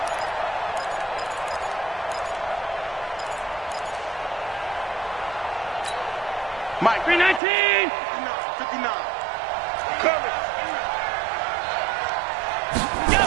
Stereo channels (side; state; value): left; drops out; at 7.4 s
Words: Mike. 319. 59. Coming.